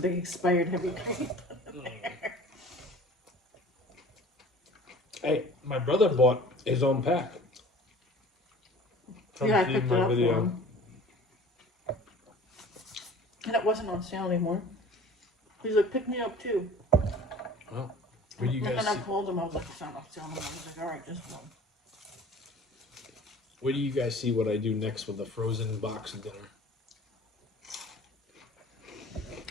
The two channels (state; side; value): normal; both; correlation 0.44